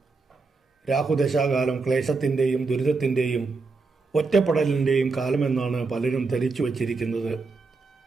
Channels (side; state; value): left; quieter; 4.1 dB